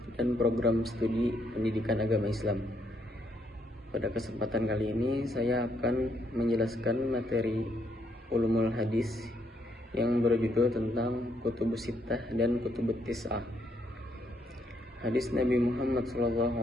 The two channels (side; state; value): both; normal; correlation 0.74